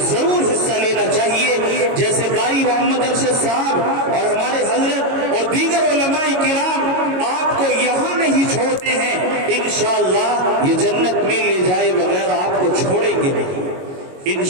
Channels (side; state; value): left; late; 22 ms